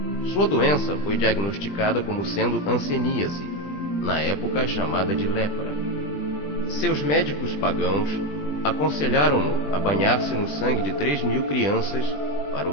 Sua doença foi diagnosticada como sendo hanseníase, na época chamada de lepra. Seus médicos pagãos aconselharam-no a banhar-se no sangue de 3.000 crianças para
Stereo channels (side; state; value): right; late; 20 ms